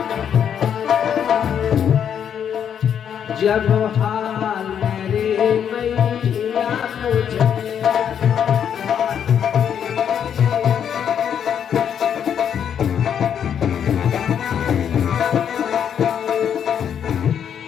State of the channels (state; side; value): quieter; right; 8.5 dB